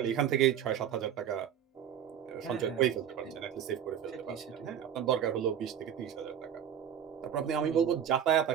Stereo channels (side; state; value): left; quieter; 9.2 dB